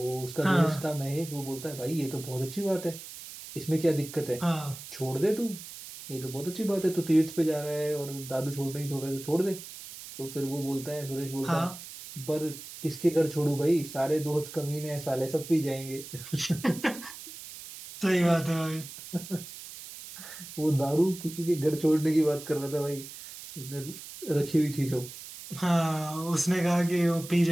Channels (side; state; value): right; noise; hiss, 13 dB below the sound